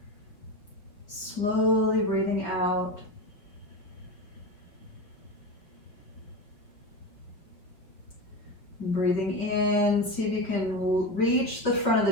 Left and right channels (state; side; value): late; right; 5.5 ms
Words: Slowly breathing out. And breathing in, see if you can reach the front